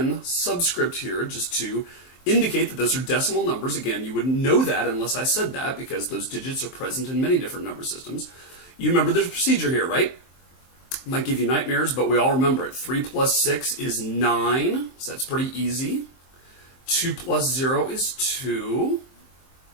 subscript here just to indicate that those are decimal numbers. Again, you wouldn't know that unless I said that because those digits are present in many different number systems. You remember there's a procedure here, right? Might give you nightmares, but we all remember it. 3 plus 6 is 9, so that's pretty easy. 2 plus 0 is 2.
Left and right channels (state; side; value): late; right; 23 ms